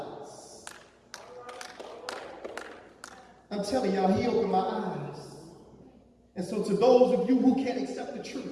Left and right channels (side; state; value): both; identical; correlation 1.00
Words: I'm telling y'all, he opened my eyes. And so to those of you who can't accept the